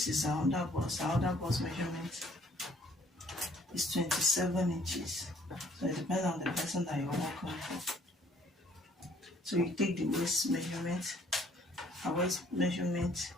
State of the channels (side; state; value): both; normal; correlation 0.61